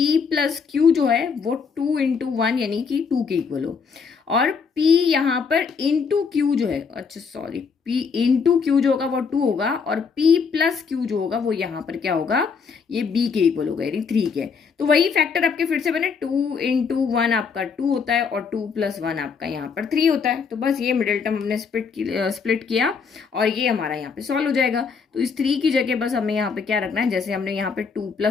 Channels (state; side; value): quieter; right; 5.7 dB